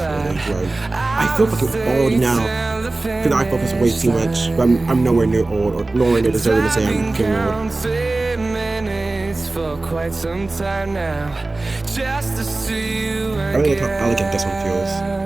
footage, right? I feel fucking old now. Because I focus way too much. But I'm nowhere near old or nowhere near deserving to say I'm fucking old. Quite some time now, just to see you I really like how elegant this one feels.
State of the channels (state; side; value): quieter; left; 3.1 dB